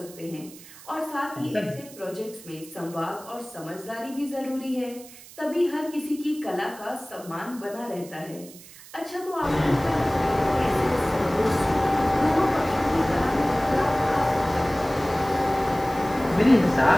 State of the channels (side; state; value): right; noise; hiss, 19 dB below the sound